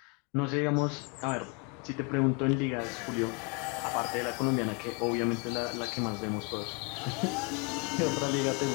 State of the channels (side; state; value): right; quieter; 32.6 dB